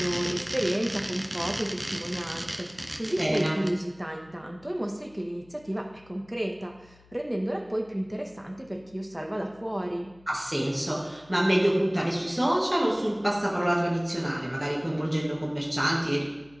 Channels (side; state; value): left; noise; hum, 27 dB below the sound